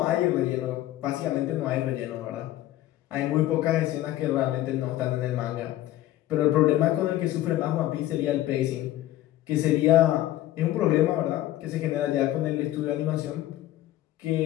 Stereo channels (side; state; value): right; quieter; 14.5 dB